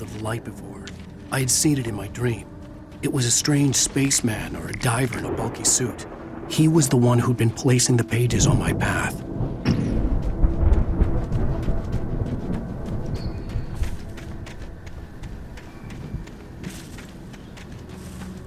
of the light before. I had seen it in my dream. It was a strange spaceman or a diver in a bulky suit. He was the one who'd been placing the pages on my path.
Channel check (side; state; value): both; identical; correlation 1.00